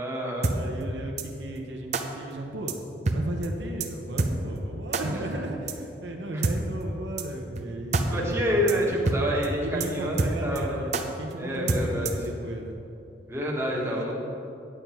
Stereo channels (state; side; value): normal; both; correlation 0.61